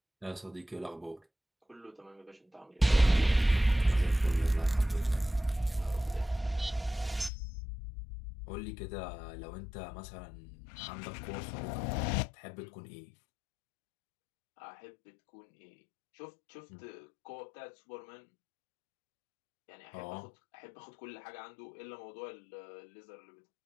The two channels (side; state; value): right; drops out; at 7.3 s